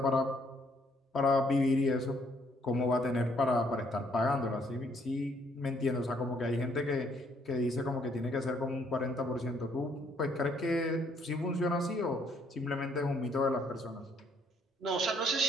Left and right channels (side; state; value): both; normal; correlation 0.67